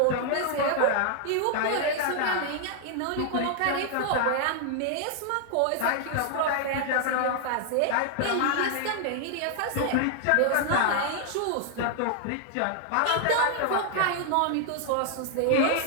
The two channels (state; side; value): different; both; correlation 0.00